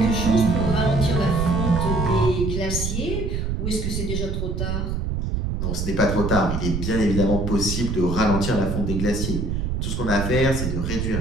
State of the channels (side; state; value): right; noise; rumble, 2 dB below the sound